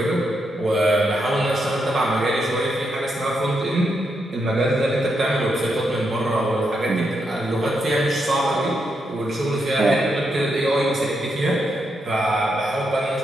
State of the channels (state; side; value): normal; both; correlation 0.82